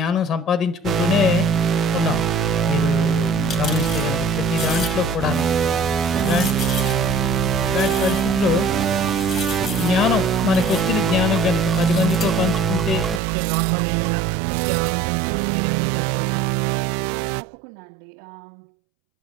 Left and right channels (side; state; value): left; drops out; at 13.2 s